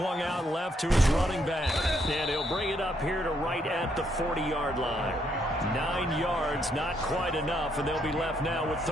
out left to his running back. And he'll bring it up here to right at the 40-yard line. 9 yards, not quite enough, and they'll be left now with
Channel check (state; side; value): normal; both; correlation 0.73